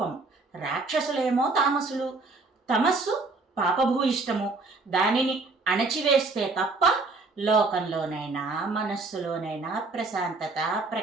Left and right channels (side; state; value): left; quieter; 3.7 dB